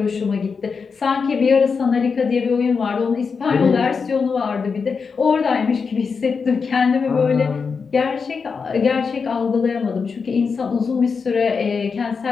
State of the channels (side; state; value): right; quieter; 5.4 dB